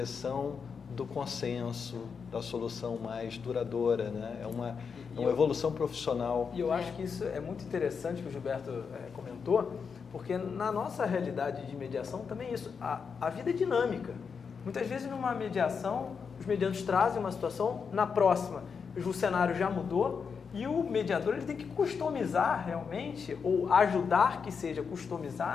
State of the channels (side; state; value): right; quieter; 5.9 dB